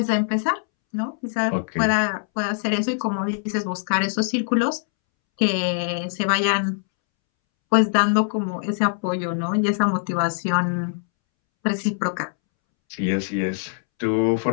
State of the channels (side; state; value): right; silent; 63 dB below the other